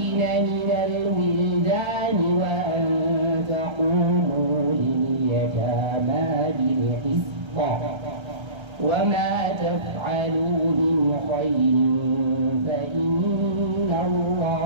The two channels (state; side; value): late; left; 1.3 ms